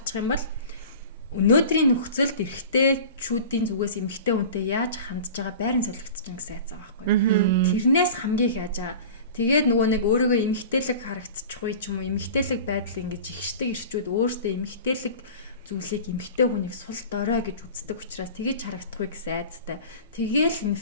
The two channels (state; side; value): inverted; both; correlation -0.37